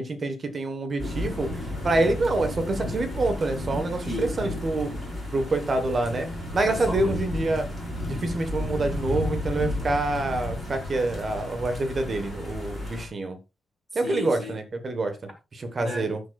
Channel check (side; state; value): both; normal; correlation 0.84